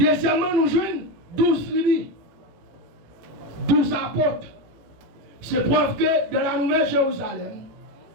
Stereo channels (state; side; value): late; left; 18 ms